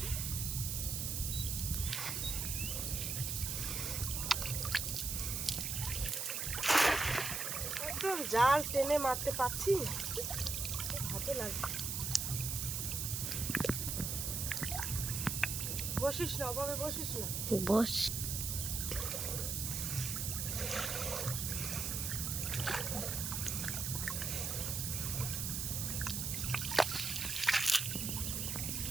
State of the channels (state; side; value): noise; right; hiss, 1 dB below the sound